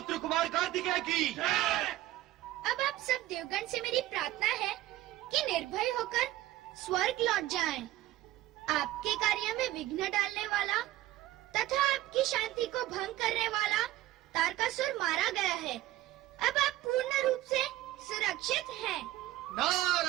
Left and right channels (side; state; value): left; quieter; 15.6 dB